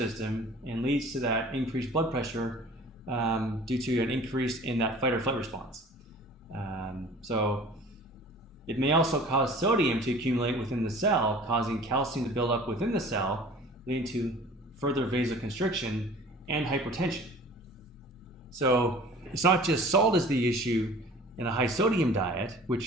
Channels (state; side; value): normal; both; correlation 0.45